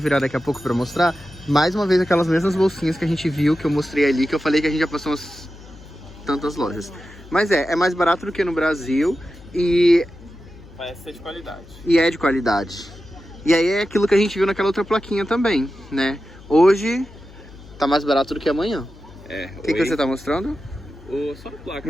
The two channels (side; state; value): left; noise; hum, 20 dB below the sound